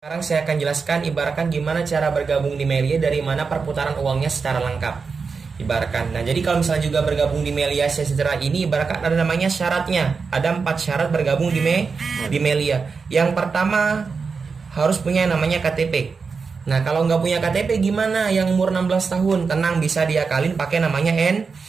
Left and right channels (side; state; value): left; quieter; 5.0 dB